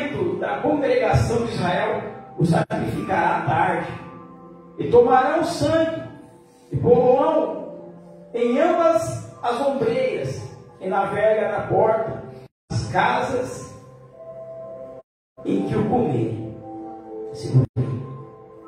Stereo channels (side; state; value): both; identical; correlation 1.00